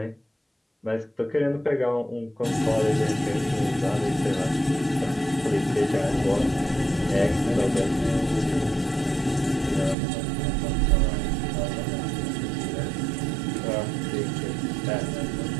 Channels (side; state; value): left; drops out; at 10.0 s